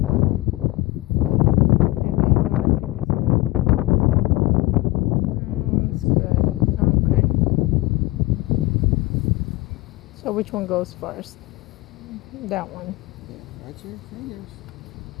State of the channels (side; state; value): right; quieter; 20.4 dB